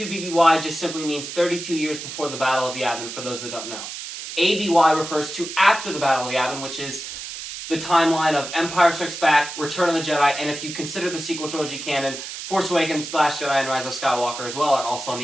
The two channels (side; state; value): right; noise; hiss, 9 dB below the sound